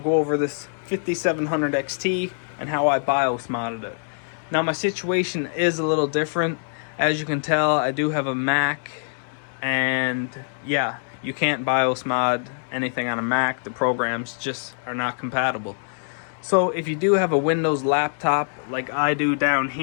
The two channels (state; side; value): silent; right; digital silence